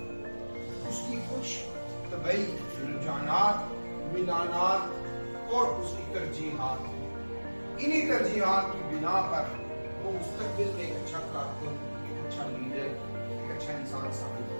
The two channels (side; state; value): both; inverted; correlation -1.00